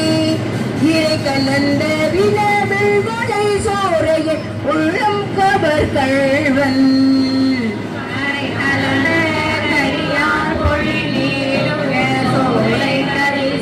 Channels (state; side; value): identical; both; correlation 1.00